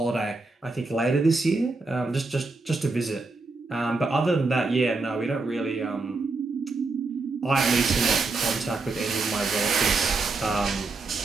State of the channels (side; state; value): left; quieter; 3.6 dB